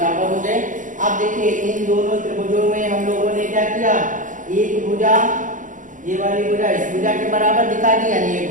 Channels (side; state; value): left; late; 0.37 ms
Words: हो गए। अब देखिए इन दोनों त्रिभुजों में हम लोगों ने क्या किया? एक भुजा, ये वाली भुजा इस भुजा के बराबर दिखा दी, यानी एक